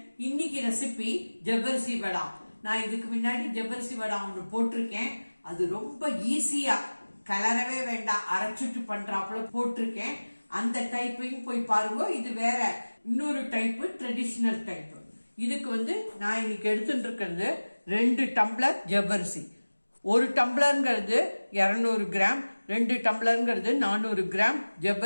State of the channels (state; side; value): inverted; both; correlation -1.00